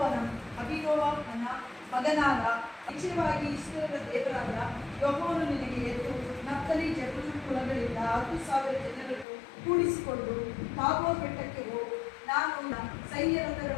ಅಭಿನೋವನ ಮಗನಾದ, ನಿಶ್ಚಯವಾಗಿ ಇಸ್ರಾಯೇಲರ ದೇವರಾದ ಯೆಹೋವನು ನಿನಗೆ ಎದ್ದು ನಫ್ತಲಿ ಜೆಬುಲೂನ್ ಕುಲಗಳಿಂದ 10,000 ಜನರನ್ನು ಕೂಡಿಸಿಕೊಂಡು ತಾಬೋರ್ ಬೆಟ್ಟಕ್ಕೆ ಹೋಗು. ನಾನು ಸೈನ್ಯ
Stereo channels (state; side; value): drops out; right; at 9.2 s